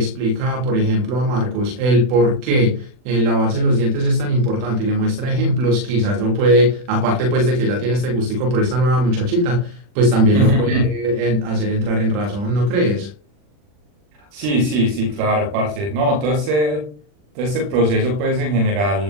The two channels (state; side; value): late; left; 40 ms